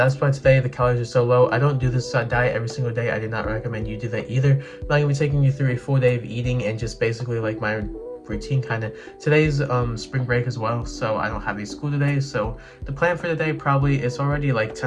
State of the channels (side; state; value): both; identical; correlation 1.00